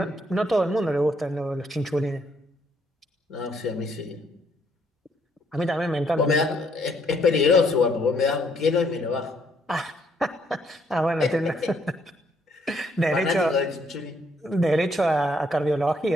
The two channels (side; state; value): both; normal; correlation 0.70